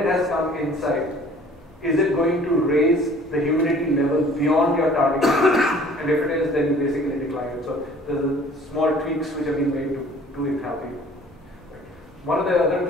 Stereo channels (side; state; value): both; normal; correlation 0.52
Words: has come inside, is it going to raise the humidity level beyond your target humidity? And if it is, then you basically decline it. So there's small tweaks which have been made to enthalpy. One of the other